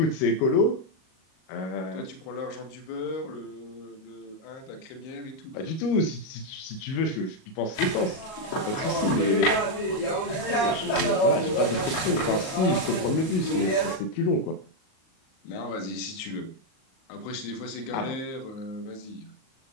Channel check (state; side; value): late; right; 37 ms